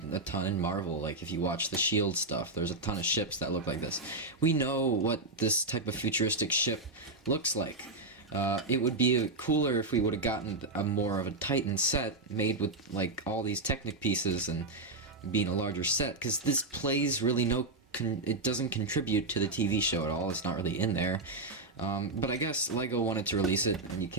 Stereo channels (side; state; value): left; quieter; 3.1 dB